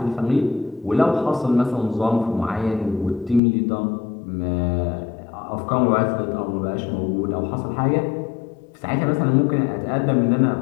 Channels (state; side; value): drops out; right; at 3.4 s